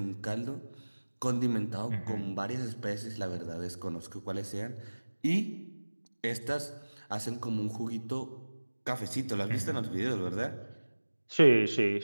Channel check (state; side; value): inverted; both; correlation -1.00